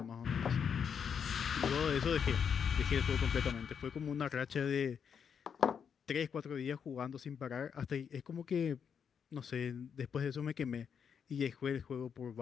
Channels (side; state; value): right; quieter; 7.2 dB